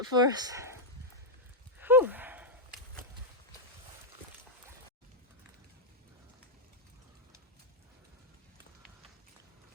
for us. Whew.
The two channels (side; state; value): both; normal; correlation -0.02